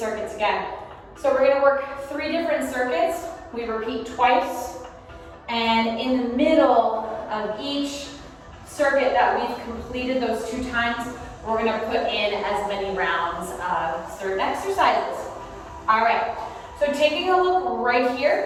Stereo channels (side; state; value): both; identical; correlation 1.00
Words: again. So we're gonna work 3 different circuits. We repeat twice. And in the middle of each circuit that we've completed those 2 times, we're gonna put in as many rounds of certain exercises. All right, so taking a look right